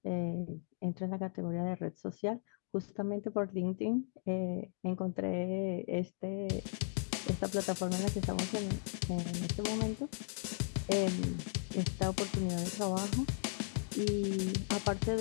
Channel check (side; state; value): right; silent; digital silence